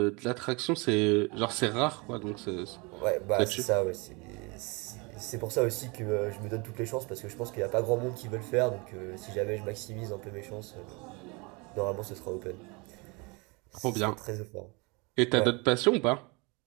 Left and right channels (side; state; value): left; quieter; 28.6 dB